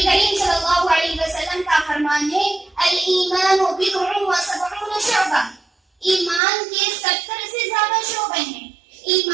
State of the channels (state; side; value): drops out; left; at 6.4 s